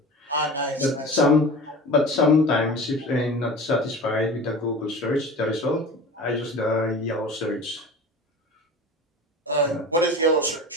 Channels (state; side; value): normal; both; correlation 0.35